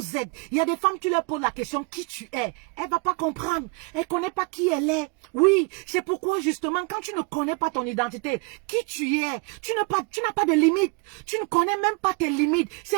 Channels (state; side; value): quieter; left; 30.5 dB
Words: êtes. Il y a des femmes, tu leur poses la question, qui tu es. Elle va pas comprendre. Elle connaît pas qui elle est. Oui, c'est pourquoi, justement, quand tu ne connais pas ton identité, qui tu es, tu n'as pas de limite. Tu ne connais même pas tes limites.